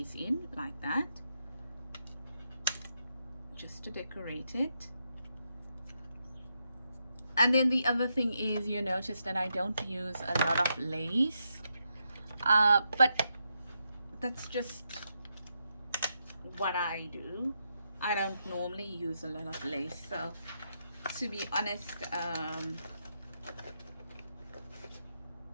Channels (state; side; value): inverted; both; correlation -0.82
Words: in like that, just to decorate it. And then the other thing is, you notice that I don't use a lot of lace, but that's just what I do. I don't normally use a lot of lace, so to be honest,